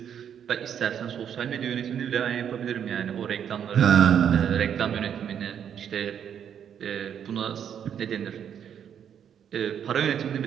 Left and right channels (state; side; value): quieter; left; 8.7 dB